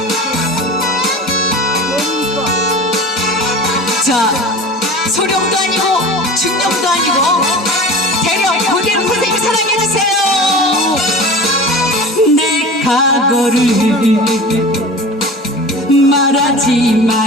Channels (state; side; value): normal; both; correlation 0.36